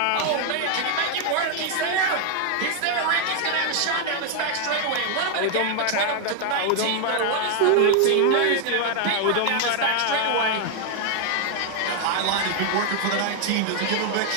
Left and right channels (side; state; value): both; different; correlation 0.00